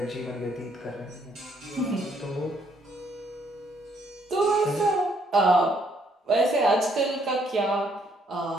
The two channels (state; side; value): normal; both; correlation 0.69